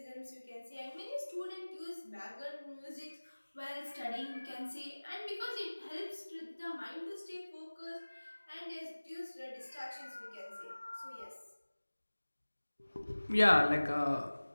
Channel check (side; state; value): both; inverted; correlation -1.00